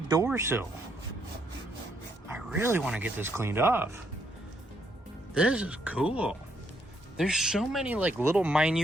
sill. I really want to get this cleaned off. This is cool. There's so many like little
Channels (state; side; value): normal; both; correlation 0.73